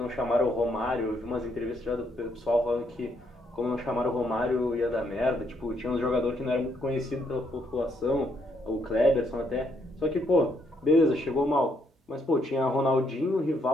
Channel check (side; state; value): both; normal; correlation 0.73